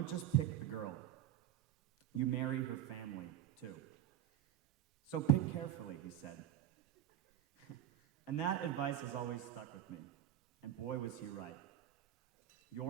just pick the girl, you marry her family too. So pick carefully, he said. And that advice has always stuck with me, and boy was he right.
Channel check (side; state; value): left; quieter; 12.3 dB